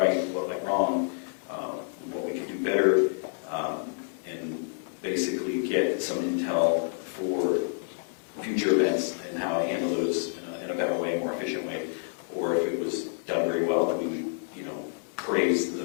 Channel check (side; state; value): right; silent; digital silence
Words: what went wrong, what we could do better, and basically get some intel for future events and how to handle those in a better way, more efficient way. Or if it was done very well, then we would, praise